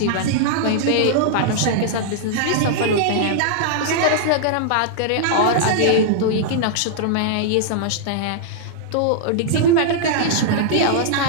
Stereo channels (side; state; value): both; different; correlation -0.01